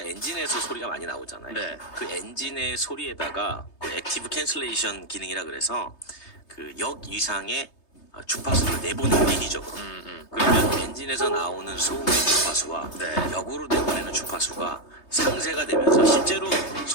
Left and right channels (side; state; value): right; late; 3.3 ms